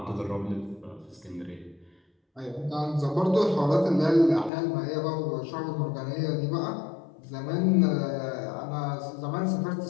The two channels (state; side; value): drops out; right; at 4.5 s